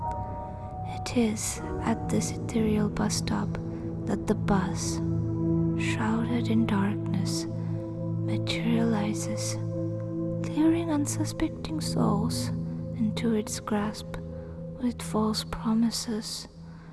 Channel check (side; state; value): both; identical; correlation 1.00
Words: It is at this ethereal bus stop that the bus, shrouded in darkness, materializes, luring unsuspecting souls into its grasp with false promises